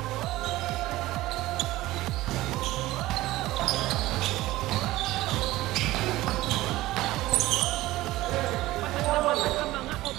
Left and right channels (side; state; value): left; quieter; 17.3 dB